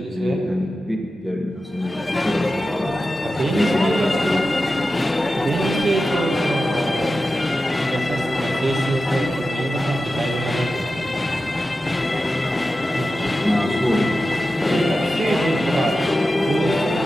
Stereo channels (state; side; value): normal; both; correlation 0.93